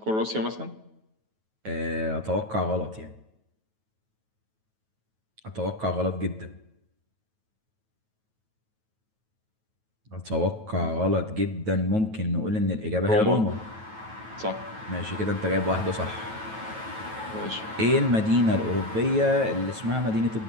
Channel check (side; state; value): left; late; 9.2 ms